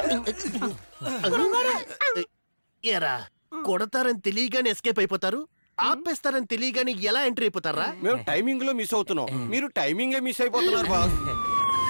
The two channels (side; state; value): both; inverted; correlation -1.00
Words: ఎరా, కొడతారని తెలియగానే ఎస్కేప్ అయిపోతారు, ఆపేస్తారని తెలియగానే ఎలా ఎంట్రీ అయిపోతారా? మేము టైమింగ్ లో మిస్ అవుతున్నాం, మీరు టైమింగే మిస్ అయిపోతున్నారు బాస్.